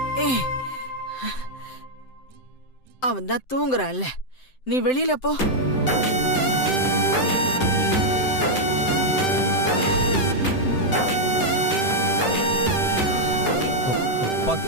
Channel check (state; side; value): late; right; 7.8 ms